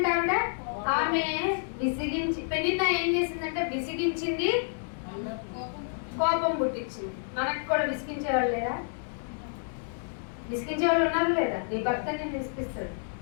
ఆమె విసిగించి, పెనిన్న ఏం చేసిందంటే విసిగించింది, కోపం పుట్టించింది. మనకు కూడా విసిగించే వాళ్ళు లేదా? విసిగించే వాళ్ళు ఉన్నారు లేదా? నీ భర్త నేను విసిగిస్తాడు,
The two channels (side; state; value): right; silent; digital silence